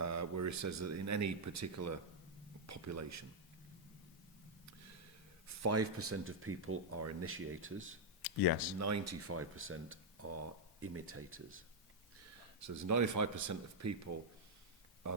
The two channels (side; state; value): both; normal; correlation -0.03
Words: he says that in any particular population, 5% of people are initiators. Yes. 95% are imitators. So there's 95% of people are